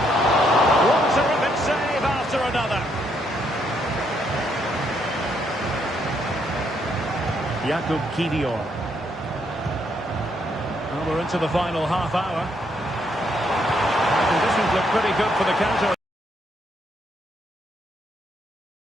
One terrific save after another. Jakub Kivior. Well, we're into the final half hour. Conditions look pretty good for the counter.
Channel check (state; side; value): normal; both; correlation 0.74